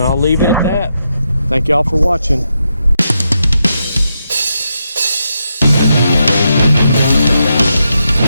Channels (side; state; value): both; inverted; correlation -0.83